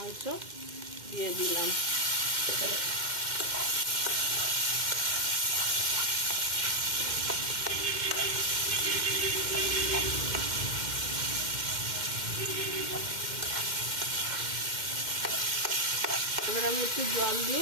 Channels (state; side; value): late; left; 2.1 ms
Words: দিয়ে দিলাম। এবার আমি একটু জল